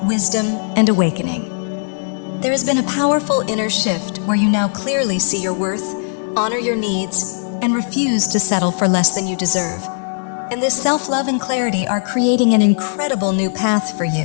wisdom, and awakening. There has been a powerful inner shift where you now clearly see your worth, honor your needs, and refuse to settle for less than you deserve. And this self-love and clarity are creating an incredible new path for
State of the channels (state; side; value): silent; right; digital silence